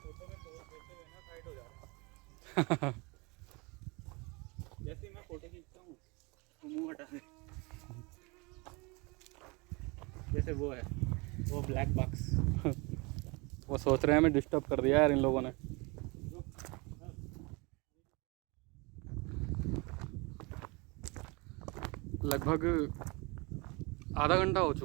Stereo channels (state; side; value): quieter; left; 27.5 dB